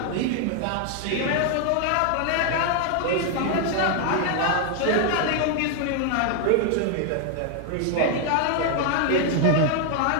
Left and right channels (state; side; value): different; both; correlation 0.00